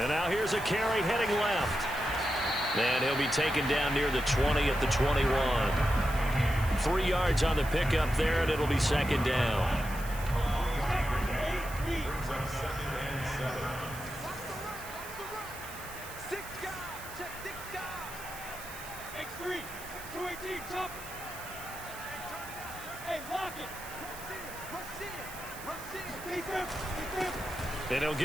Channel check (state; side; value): noise; right; hiss, 14 dB below the sound